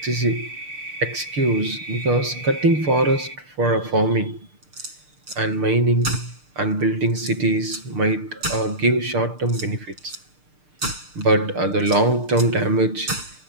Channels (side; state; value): left; late; 6.6 ms